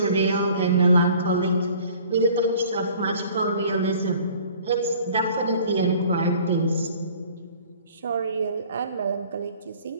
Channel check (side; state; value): both; inverted; correlation -0.51